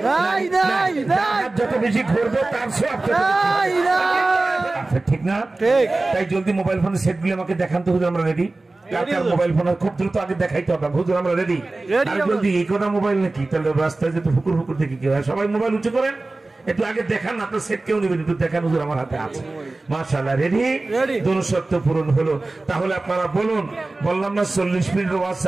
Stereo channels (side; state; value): left; quieter; 3.2 dB